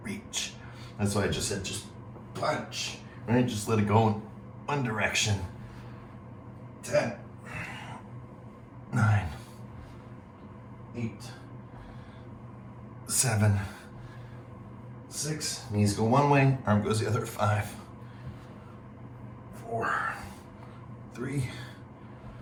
reach. That's why I just said just punch, right? Just let it go in one direction. 10, 9, 8, 7, 6. Knees go one way, arm goes the other. 5, 4, 3,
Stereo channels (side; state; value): both; identical; correlation 1.00